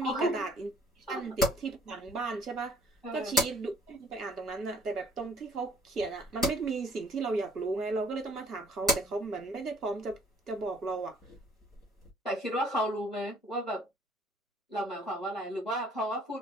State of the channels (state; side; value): normal; both; correlation 0.58